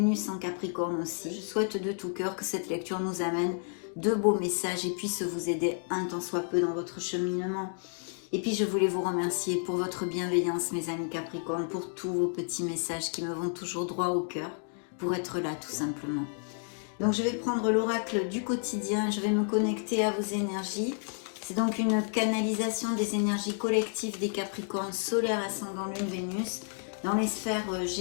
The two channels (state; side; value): silent; right; 57 dB below the other